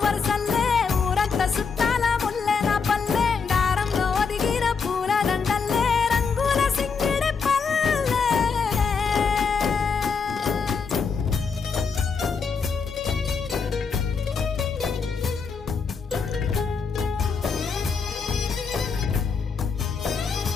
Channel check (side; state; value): right; quieter; 5.4 dB